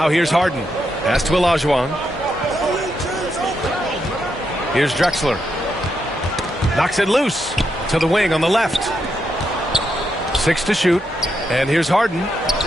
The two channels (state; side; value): normal; both; correlation 0.81